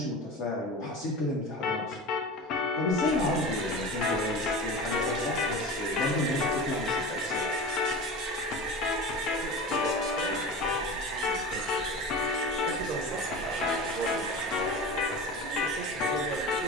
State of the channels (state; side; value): normal; both; correlation 0.31